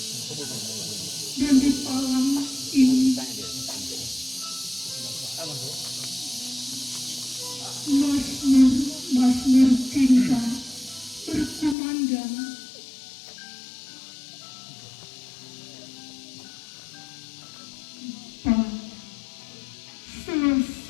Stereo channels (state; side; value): drops out; right; at 11.8 s